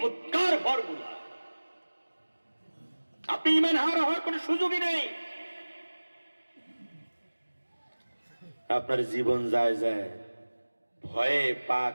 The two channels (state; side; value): inverted; both; correlation -1.00